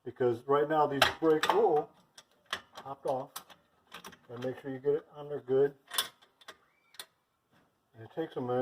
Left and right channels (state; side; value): identical; both; correlation 1.00